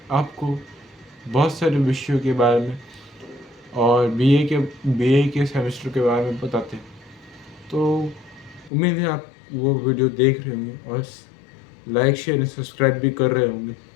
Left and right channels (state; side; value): drops out; right; at 8.7 s